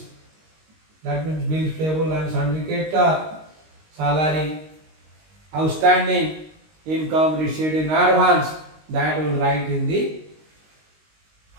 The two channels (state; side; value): late; left; 19 ms